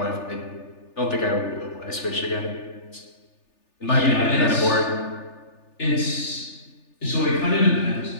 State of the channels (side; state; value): right; late; 3.4 ms